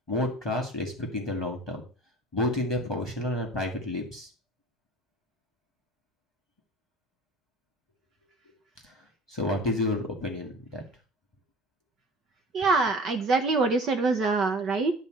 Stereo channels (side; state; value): both; normal; correlation 0.41